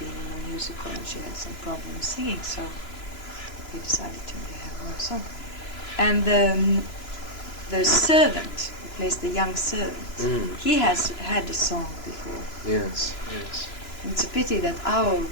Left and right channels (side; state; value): right; late; 3.0 ms